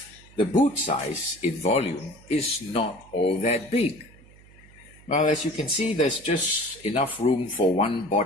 the boot size in volume is not all that big. Well, as you can see, there's just enough room for one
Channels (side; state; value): right; noise; hum, 24 dB below the sound